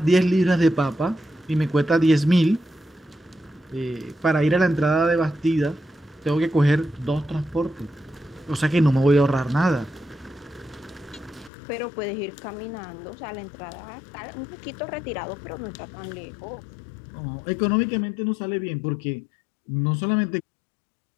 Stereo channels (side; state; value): right; drops out; at 11.5 s